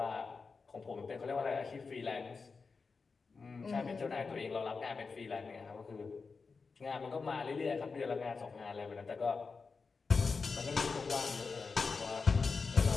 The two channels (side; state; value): right; quieter; 4.7 dB